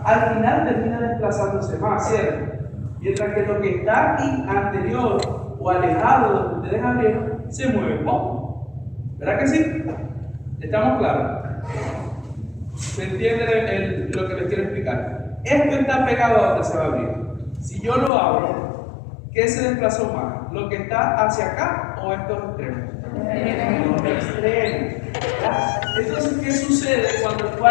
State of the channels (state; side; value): drops out; right; at 18.1 s